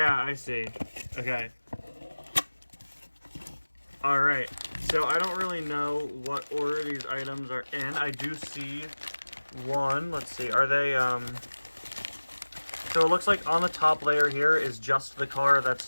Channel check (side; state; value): both; inverted; correlation -1.00